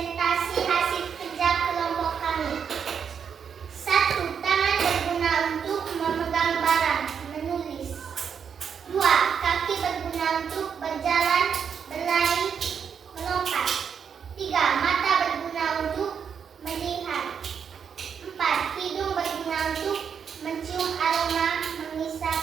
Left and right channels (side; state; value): left; quieter; 7.1 dB